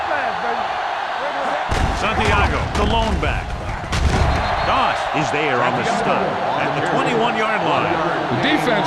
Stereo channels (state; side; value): identical; both; correlation 1.00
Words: Santiago, the lone back. Doss is there on the stop at the 21-yard line. The defense